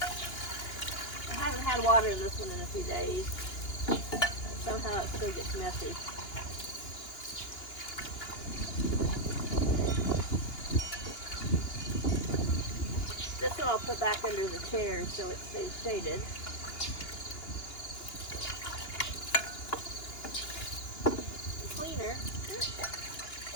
I haven't had water in this one in a few days. Somehow it still gets messy. This one I'll put back under the chair so it stays shaded. The cleaner.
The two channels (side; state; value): right; late; 2.8 ms